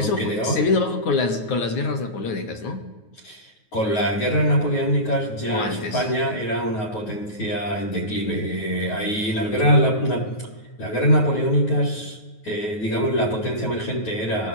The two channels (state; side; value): late; right; 9.4 ms